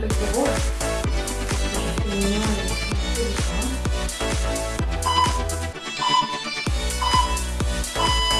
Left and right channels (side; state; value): both; identical; correlation 1.00